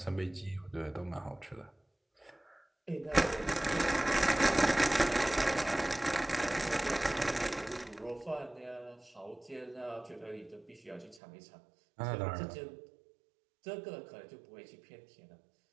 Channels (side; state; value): left; drops out; at 11.2 s